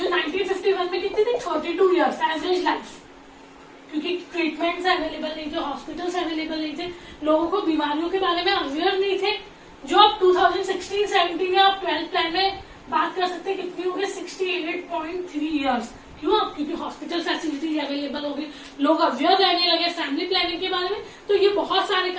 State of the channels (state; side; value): identical; both; correlation 1.00